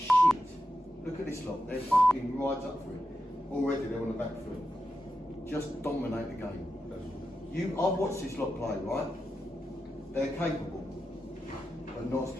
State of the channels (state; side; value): normal; both; correlation 0.89